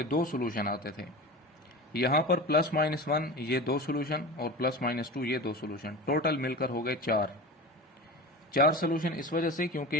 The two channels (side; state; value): both; normal; correlation 0.31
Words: दो सोल्यूशन आते थे। यहाँ पर +-1 ये दो सोल्यूशन और +-2 ये दो सोल्यूशन, टोटल मिलकर हो गए 4 सोल्यूशन। इस वजह से